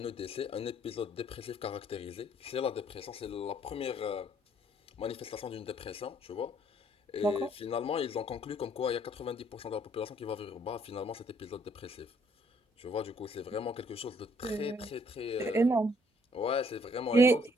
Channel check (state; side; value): normal; both; correlation 0.64